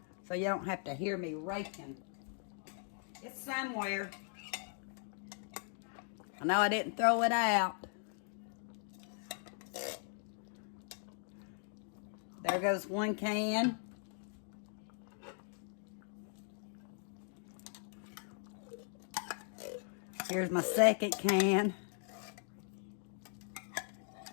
So you don't have to hear me raking. It's somewhere. I know I didn't throw it out. There goes 1 can. Here's my 2nd can.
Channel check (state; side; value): silent; right; 52 dB below the other